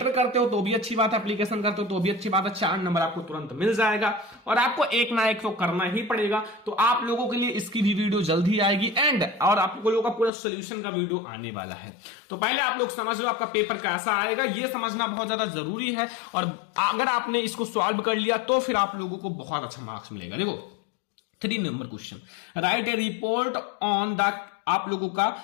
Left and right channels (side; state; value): right; drops out; at 10.3 s